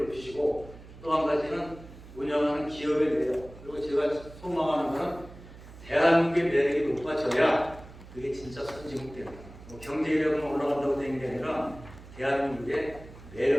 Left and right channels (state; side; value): noise; right; hum, 18 dB below the sound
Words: 높이시고 또 한 가지는 운영하는 기업의 매력 그리고 제가 소망하는 것은 대한민국의 매력이 높아져야 그게 진짜 선진국 됩니다. 뭐 경제력은 올라간다고 되는 게 아니라 대한민국의